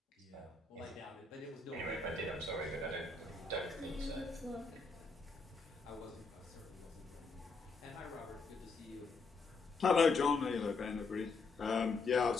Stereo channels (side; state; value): right; quieter; 4.1 dB